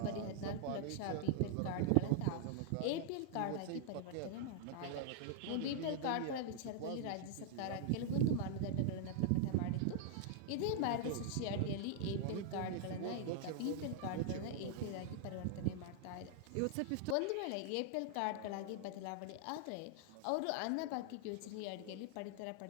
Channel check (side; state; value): both; different; correlation -0.01